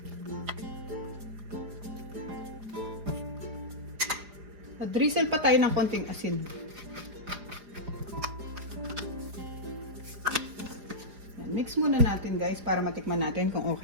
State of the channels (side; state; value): left; late; 4.9 ms